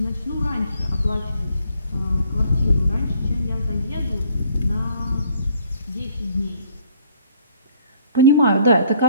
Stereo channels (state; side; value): inverted; both; correlation -0.62